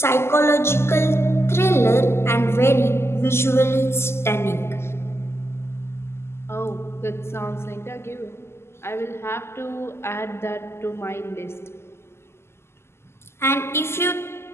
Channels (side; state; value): right; late; 0.12 ms